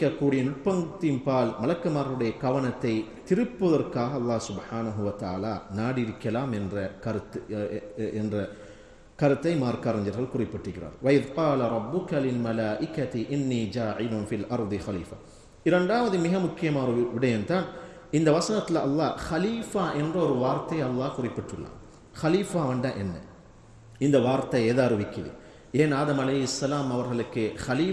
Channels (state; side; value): identical; both; correlation 1.00